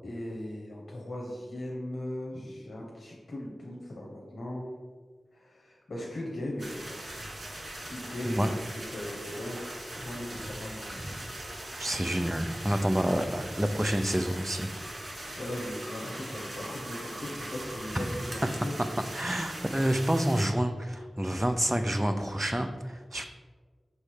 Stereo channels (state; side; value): normal; both; correlation 0.97